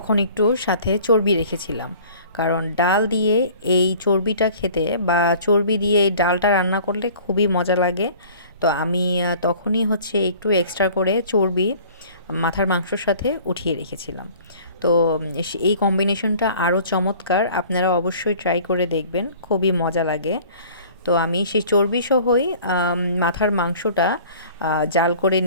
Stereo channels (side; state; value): both; inverted; correlation -0.49